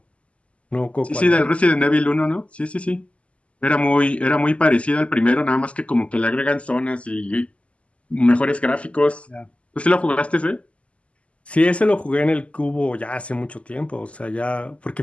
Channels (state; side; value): late; right; 0.060 ms